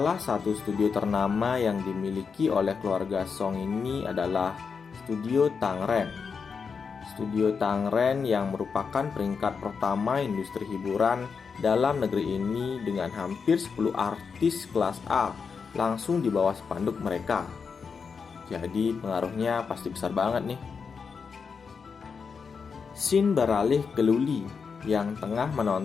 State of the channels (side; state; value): right; quieter; 5.7 dB